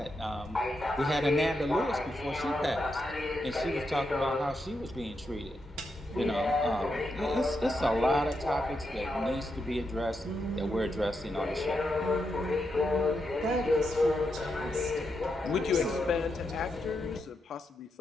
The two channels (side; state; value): both; normal; correlation 0.84